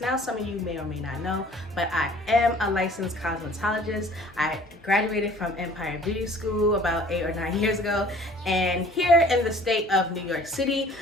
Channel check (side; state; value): both; normal; correlation 0.51